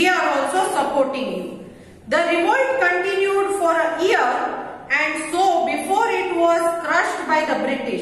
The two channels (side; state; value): both; identical; correlation 1.00